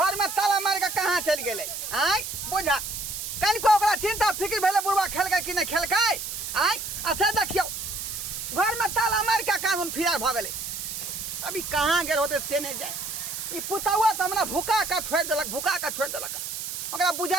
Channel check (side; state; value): right; noise; hiss, 6 dB below the sound